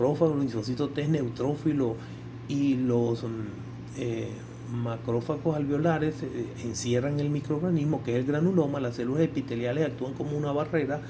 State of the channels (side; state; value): both; identical; correlation 1.00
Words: los linfocitos T neutrófilos y los macrófagos alveolares encierran el microorganismo, que es el granuloma. Las células epiteliales actúan como una barrera.